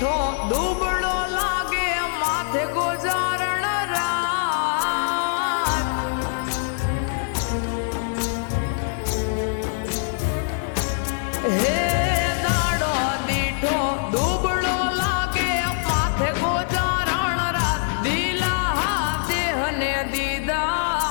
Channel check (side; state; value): right; silent; digital silence